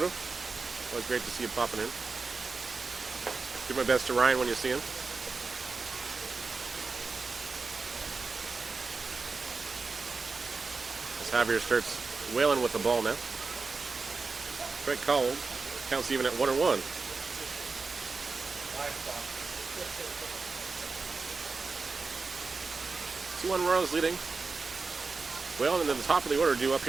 Always great to see you popping in. Do my best to Ryan when you see him. As Javier starts wailing with the ball now. Strike called. Counts even at 1-1. 2-1 Royals leading. Well, and then the top of the order due up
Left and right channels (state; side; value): quieter; left; 4.3 dB